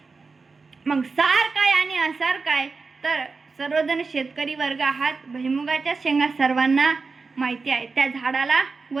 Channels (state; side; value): quieter; left; 4.3 dB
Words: मग सार काय आणि असार काय तर सर्वजण शेतकरी वर्ग आहात. भुईमुगाच्या शेंगा सर्वांना माहिती आहे. त्या झाडाला